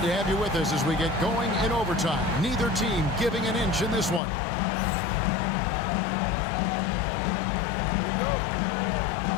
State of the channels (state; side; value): drops out; right; at 4.2 s